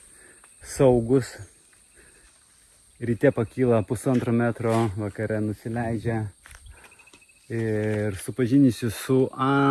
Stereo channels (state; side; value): identical; both; correlation 1.00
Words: saugus, ryte pakyla 1,5 metro, vakare nusileidžia ir supažinysiu su